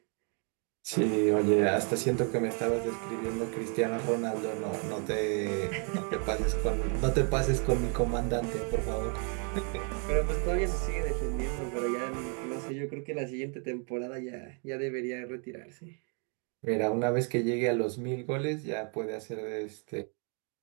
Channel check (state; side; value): quieter; left; 39.2 dB